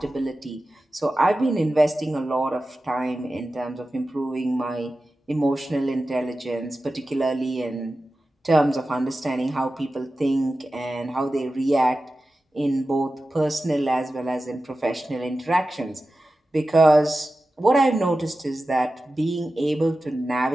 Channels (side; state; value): both; normal; correlation 0.94